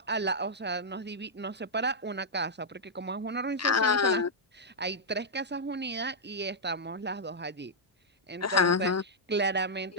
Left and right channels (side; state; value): both; normal; correlation -0.06